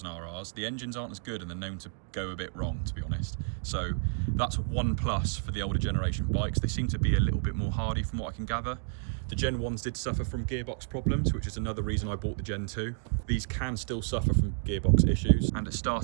the engines aren't as good and they're known to go a bit wrong, to be honest. So that's one plus for the older generation bikes. They seem to be a little bit more hardy from what I can gather. The Gen 1s did suffer from gearbox problems, which is another reason I bought the Gen 2. These can still suffer from gearbox issues, and at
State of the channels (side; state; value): left; silent; digital silence